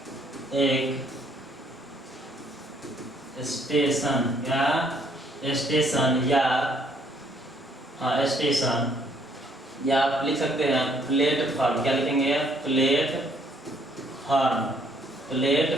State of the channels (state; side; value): normal; both; correlation 0.66